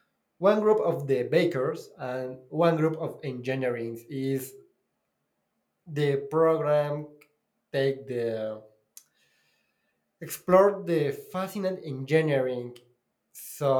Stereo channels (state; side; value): identical; both; correlation 1.00